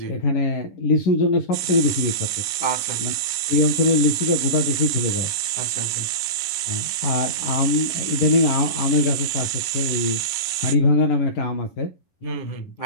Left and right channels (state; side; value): late; right; 9.8 ms